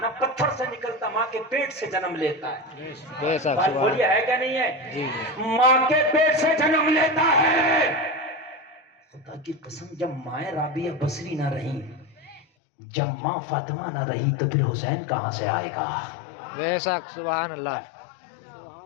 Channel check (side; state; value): right; drops out; at 12.5 s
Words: پتھر سے نکلتا، ماں کے پیٹ سے جنم لیتا ہے. بے شک. بات بولیے ہے کیا نہیں ہے؟ جی. ماں کے پیٹ سے جنم لیتا ہے. خدا کی قسم جب مائیں رابعہ بصری نہ رہی، جب ماں فاطمہ نہ رہی تو پھر حسین کہاں سے آئے گا؟ بے شک سبحان اللہ.